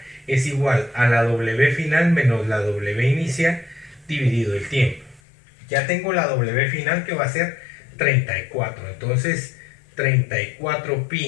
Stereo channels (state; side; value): drops out; right; at 5.2 s